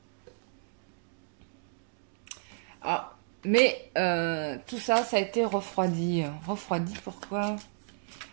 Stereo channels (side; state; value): left; silent; digital silence